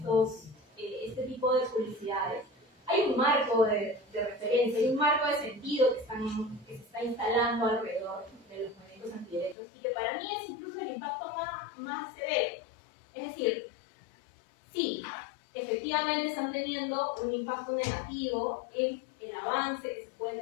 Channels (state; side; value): drops out; right; at 9.6 s